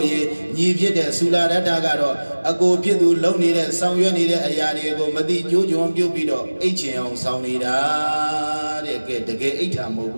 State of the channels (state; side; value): inverted; both; correlation -1.00